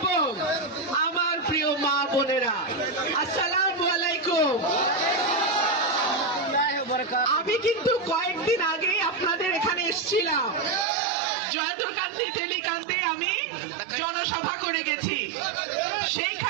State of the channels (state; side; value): drops out; left; at 10.9 s